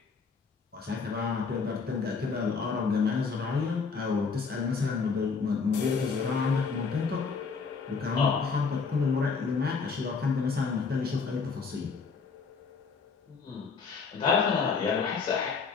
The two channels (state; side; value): quieter; right; 5.1 dB